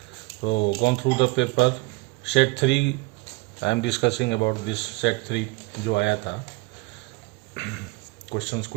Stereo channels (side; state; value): left; quieter; 24.6 dB